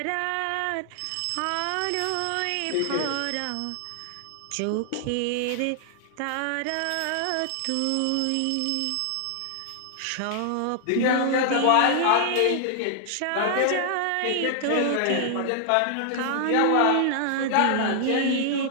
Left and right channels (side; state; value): both; different; correlation 0.00